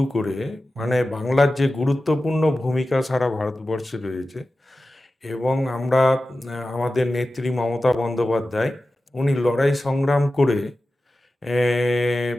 করে, মানে বাংলার যে গুরুত্বপূর্ণ ভূমিকা সারা ভারতবর্ষে রয়েছে, এবং আমরা আমাদের নেত্রী মমতা বন্দ্যোপাধ্যায়, উনি লড়াই সংগ্রাম করে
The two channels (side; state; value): both; normal; correlation 0.94